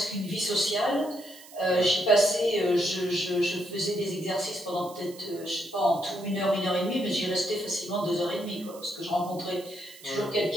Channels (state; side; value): noise; right; hiss, 20 dB below the sound